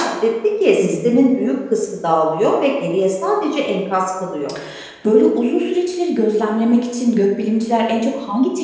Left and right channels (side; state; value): both; identical; correlation 1.00